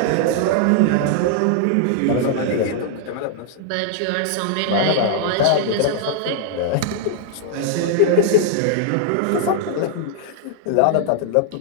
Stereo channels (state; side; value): different; both; correlation -0.01